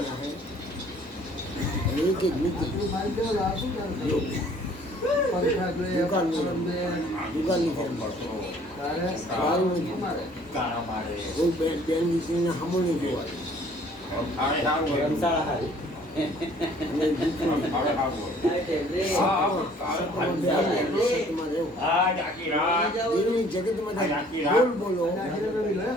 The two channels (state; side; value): normal; both; correlation 0.56